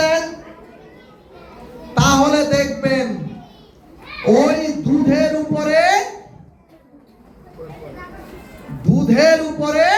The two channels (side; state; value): both; identical; correlation 1.00